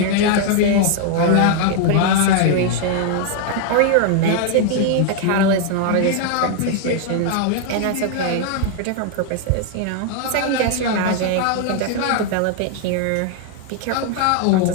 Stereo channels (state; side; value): different; both; correlation 0.00